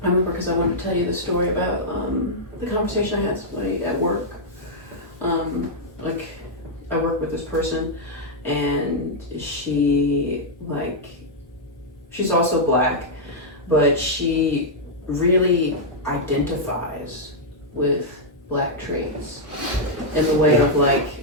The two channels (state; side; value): normal; both; correlation -0.06